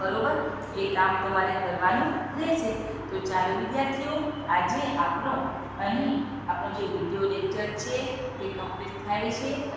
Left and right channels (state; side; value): identical; both; correlation 1.00